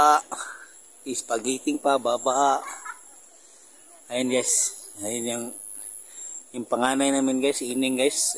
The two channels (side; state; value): both; identical; correlation 1.00